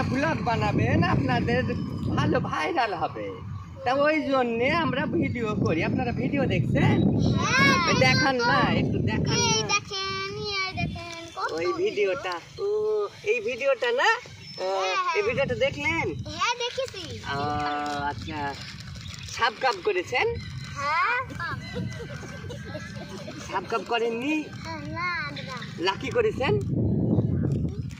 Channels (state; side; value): identical; both; correlation 1.00